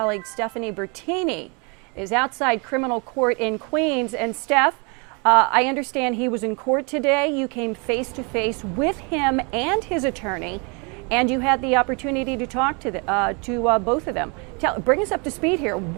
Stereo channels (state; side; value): quieter; left; 32.6 dB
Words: Stephanie Bertini is outside criminal court in Queens. And Steph, I understand he was in court today. You came face to face with him and his attorney, and you had the opportunity to talk to both of them. Bring us up to speed here.